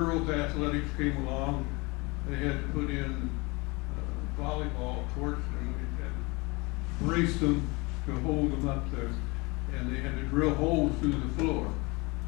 athletics came along, they had to put in volleyball courts, and we had to brace them to hold them up there, and they had to drill holes through the floor,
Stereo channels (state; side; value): quieter; right; 26.0 dB